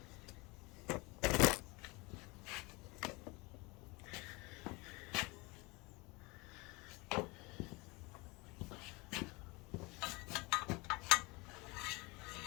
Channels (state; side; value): quieter; right; 25.9 dB